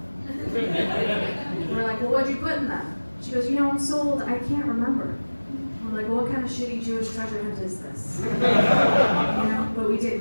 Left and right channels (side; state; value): both; inverted; correlation -1.00